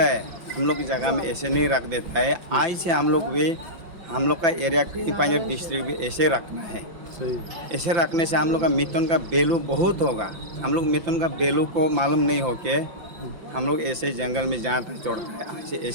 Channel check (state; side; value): late; left; 5.9 ms